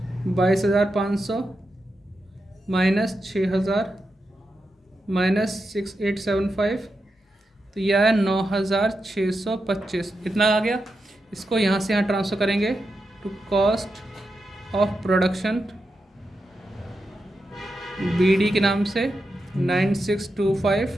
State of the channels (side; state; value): both; normal; correlation 0.88